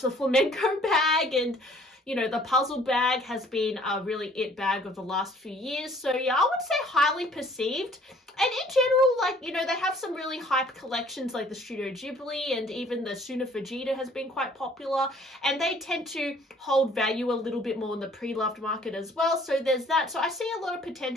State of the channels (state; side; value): normal; both; correlation 0.57